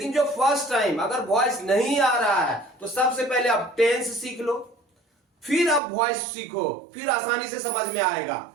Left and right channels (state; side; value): drops out; left; at 5.8 s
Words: जो फर्स्ट टाइम अगर वॉइस नहीं आ रहा है तो सबसे पहले आप टेंस सीख लो, फिर आप वॉइस सीखो, फिर आसानी से समझ में आएगा।